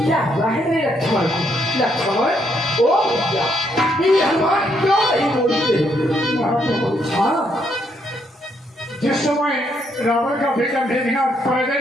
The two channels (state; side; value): normal; both; correlation 0.74